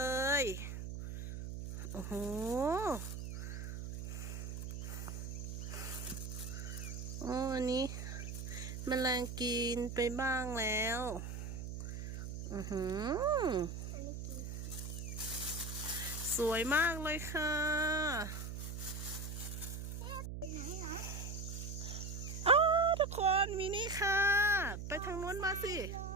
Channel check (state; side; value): noise; right; hum, 6 dB below the sound